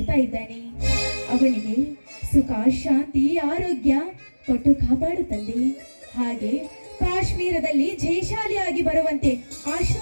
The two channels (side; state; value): both; inverted; correlation -1.00